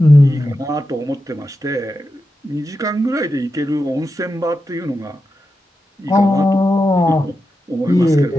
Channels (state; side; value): normal; both; correlation 0.89